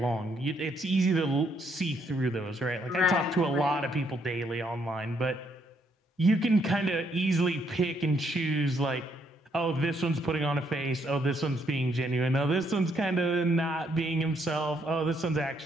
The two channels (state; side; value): normal; both; correlation 0.72